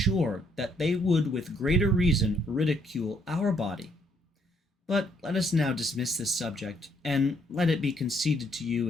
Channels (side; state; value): both; normal; correlation 0.70